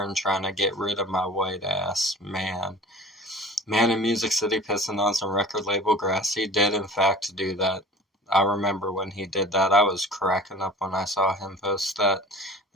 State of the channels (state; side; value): normal; both; correlation 0.41